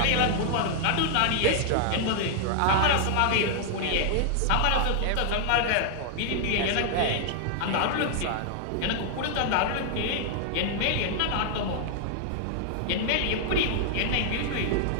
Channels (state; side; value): different; both; correlation 0.00